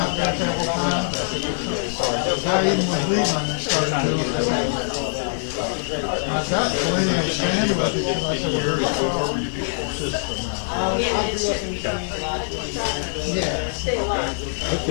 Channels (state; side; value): silent; right; 63 dB below the other